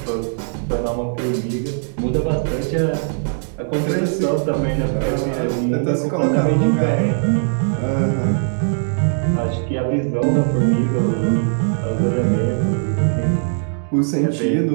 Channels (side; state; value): left; silent; digital silence